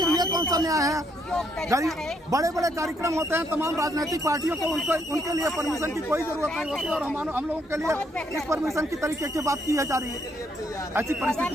ये कौन सा न्याय है? गरीब बड़े बड़े कार्यक्रम होते हैं, तमाम राजनीतिक पार्टियों को उनके लिए परमिशन की कोई जरूरत नहीं होती और हम लोगों के लिए इस परमिशन की तरीके की बात की जा रही है। ऐसी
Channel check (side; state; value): both; normal; correlation 0.72